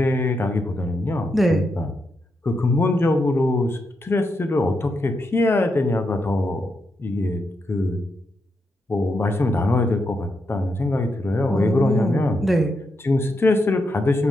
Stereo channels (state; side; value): normal; both; correlation 0.83